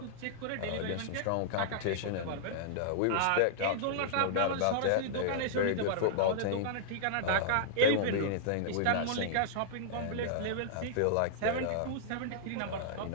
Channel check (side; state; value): both; different; correlation -0.02